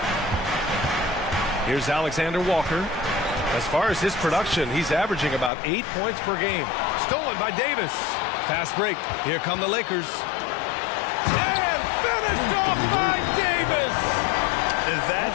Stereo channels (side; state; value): right; drops out; at 5.5 s